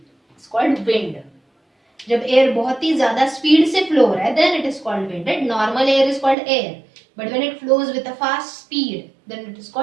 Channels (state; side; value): drops out; left; at 6.4 s